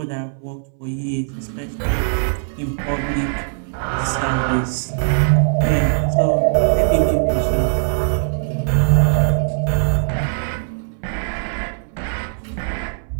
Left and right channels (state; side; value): silent; left; 66 dB below the other